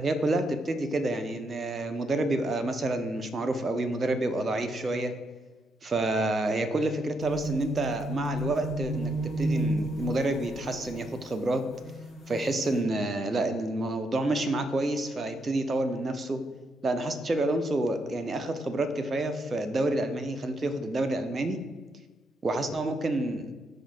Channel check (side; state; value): both; normal; correlation 0.78